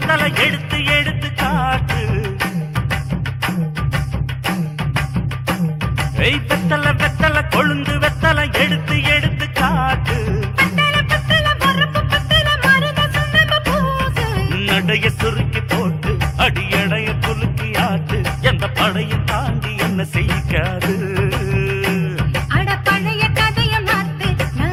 எடுத்து எடுத்து காட்டு. வெத்தல வெத்தல கொழுந்து வெத்தல எடுத்து எடுத்து காட்டு. நடைய சுருக்கி போட்டு அடியடைய குலுக்கி ஆட்டு. எந்த படையும் தாண்டி என்ன செய்யாது.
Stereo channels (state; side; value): identical; both; correlation 1.00